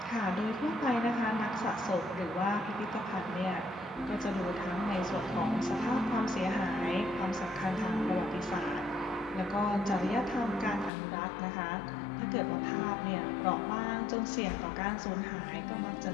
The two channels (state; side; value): drops out; right; at 10.9 s